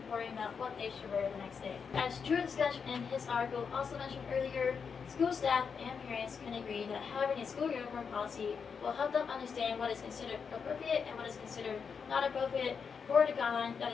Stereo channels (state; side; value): quieter; right; 6.1 dB